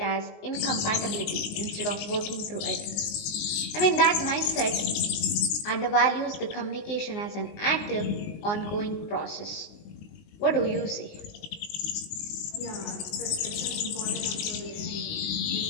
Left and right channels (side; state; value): right; late; 19 ms